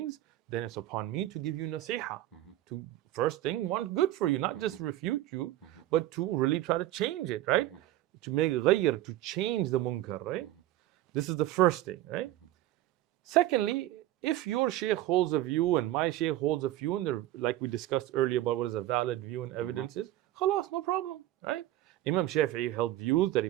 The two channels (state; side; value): quieter; left; 14.7 dB